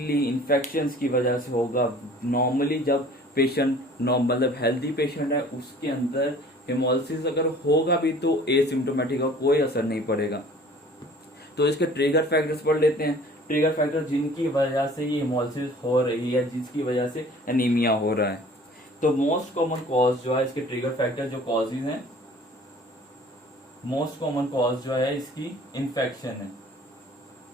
इन्फेक्शंस की वजह से होगा। नॉर्मली जब पेशेंट मतलब हेल्दी पेशेंट है उसके अंदर हेमोलिसिस अगर होगा भी तो एसिम्टोमेटिक का कोई असर नहीं पड़ेगा। तो इसके ट्रिगर फैक्टर्स पढ़ लेते हैं। ट्रिगर फैक्टर जिनकी वजह से ये हेमोलिसिस हो रही है, जिसकी वजह से एनीमिया हो रहा है। तो मोस्ट कॉमन कॉज जो है इसके ट्रिगर फैक्टर जो कॉजेज हैं, मोस्ट कॉमन कॉज जो है इसकी इन्फेक्शन है।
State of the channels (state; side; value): normal; both; correlation 0.49